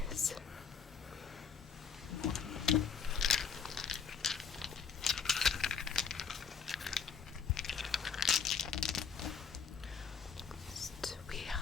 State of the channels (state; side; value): quieter; right; 6.4 dB